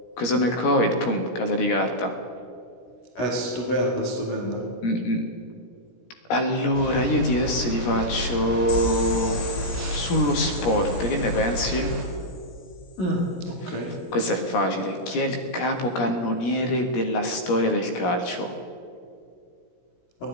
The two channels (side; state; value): right; late; 17 ms